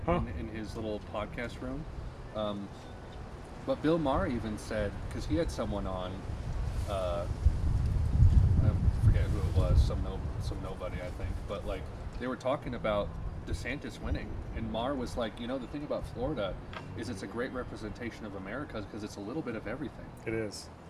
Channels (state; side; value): identical; both; correlation 1.00